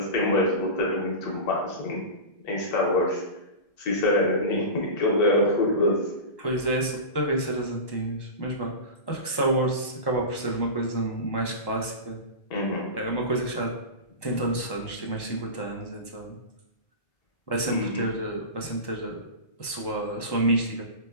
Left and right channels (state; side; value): late; right; 1.1 ms